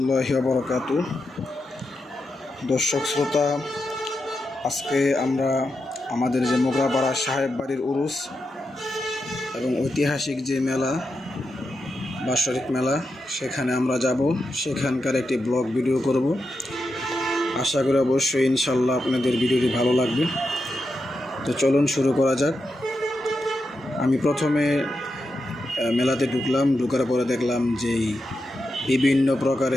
ওয়া বারাকাতুহু। দর্শক শ্রোতা, আজকে আমরা আমাদের যে মোগরাপাড়া সাহেব বাড়ির উরুস এবং ঐতিহাসিক যে মেলা বাৎসরিক মেলা সেখানে আমরা যাব। সেখানকার একটি ব্লগ ভিডিও করব। আশা করি অবশ্যই ইনশাল্লাহ আপনাদের ভিডিওটি ভালো লাগবে। তো চলুন শুরু করা যাক। আমি প্রথমে মেলাতে ঢুকার পরে দেখলাম যে বিভিন্ন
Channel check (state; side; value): normal; both; correlation 0.87